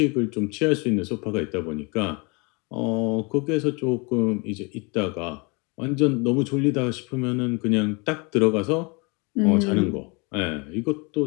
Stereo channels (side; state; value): right; quieter; 29.9 dB